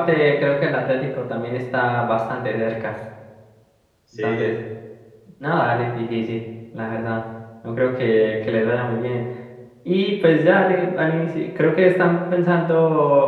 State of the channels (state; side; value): identical; both; correlation 1.00